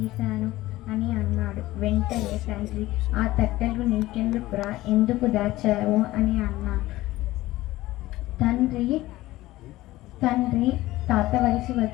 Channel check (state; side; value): quieter; right; 17.2 dB